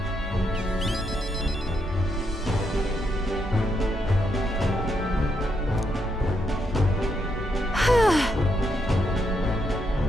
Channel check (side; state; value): both; normal; correlation 0.79